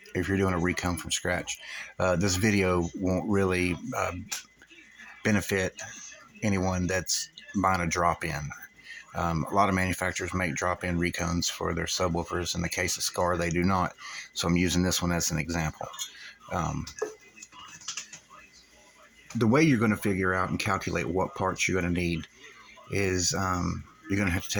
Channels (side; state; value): both; identical; correlation 1.00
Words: if you're doing a recone from scratch. This video won't really benefit anyone that's buying a drop-in. A lot of manufacturers make drop-in recones for their subwoofers. In the case of Scar, they do not. So I'm using this one as an example. Um, the way you're going to figure out and calculate what parts you're going to need is you're going to have to